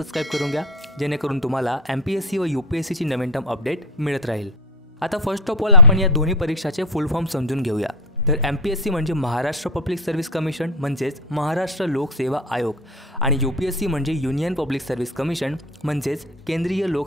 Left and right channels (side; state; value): both; normal; correlation 0.17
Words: करून घ्या, जेणेकरून तुम्हाला MPSC व UPSC ची नवीन टर्म अपडेट मिळत राहील। आता फर्स्ट ऑफ ऑल आपण या दोन्ही परीक्षाचे फुल फॉर्म समजून घेऊया। तर MPSC म्हणजे महाराष्ट्र पब्लिक सर्व्हिस कमिशन म्हणजेच महाराष्ट्र लोक सेवा आयोग आणि UPSC म्हणजे युनियन पब्लिक सर्व्हिस कमिशन म्हणजेच केंद्रीय